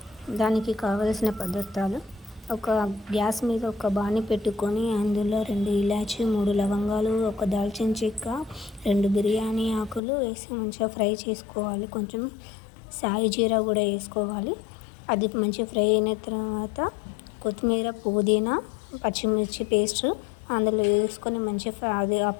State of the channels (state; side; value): drops out; right; at 10.0 s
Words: దానికి కావలసిన పదార్థాలు: ఒక గ్యాస్ మీద ఒక బాణీ పెట్టుకొని అందులో 2 ఇలాచి, 3 లవంగాలు, ఒక దాల్చిన చెక్క, 2 బిర్యానీ ఆకులు వేసి మంచిగా ఫ్రై చేసుకోవాలి. కొంచెం సాయి జీరా కూడా వేసుకోవాలి. అది మంచిగా ఫ్రై అయిన తర్వాత కొత్తిమీర, పుదీనా, పచ్చిమిర్చి పేస్ట్ అందులో వేసుకొని మంచిగా అది ఆ